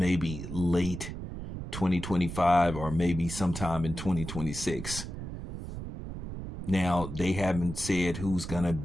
late 2025 or maybe sometime in 2026. Now, they haven't said who's going to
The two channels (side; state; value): right; noise; rumble, 8 dB below the sound